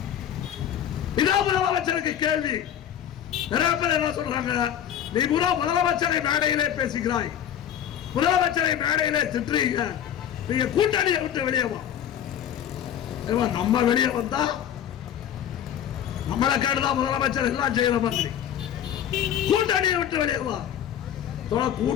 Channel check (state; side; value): quieter; right; 10.0 dB